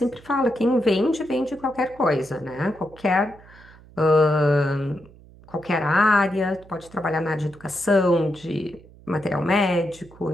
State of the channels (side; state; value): right; noise; hum, 23 dB below the sound